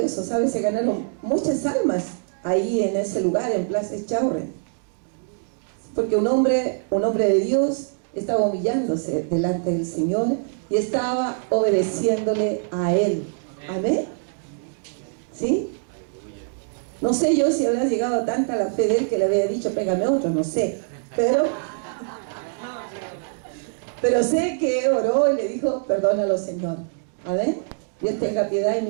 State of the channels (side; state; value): left; silent; digital silence